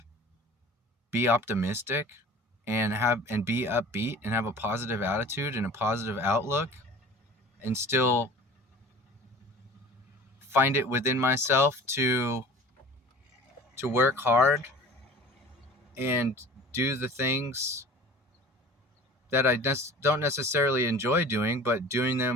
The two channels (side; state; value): both; normal; correlation 0.43